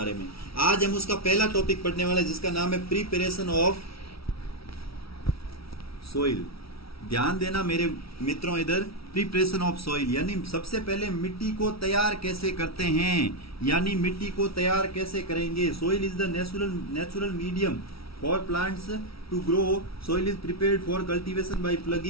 में। आज हम उसका पहला टॉपिक पढ़ने वाले जिसका नाम है प्रिपरेशन ऑफ सोइल। ध्यान देना मेरे मित्रों, इधर प्रिपरेशन ऑफ सोइल यानी सबसे पहले मिट्टी को तैयार कैसे करते हैं, यानी मिट्टी को तैयार कैसे करेंगे। Soil is the natural medium for plants to grow. Soil is prepared for cultivation by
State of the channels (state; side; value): late; right; 0.75 ms